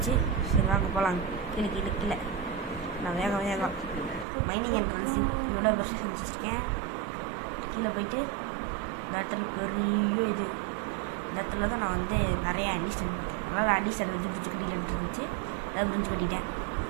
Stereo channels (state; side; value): drops out; left; at 4.2 s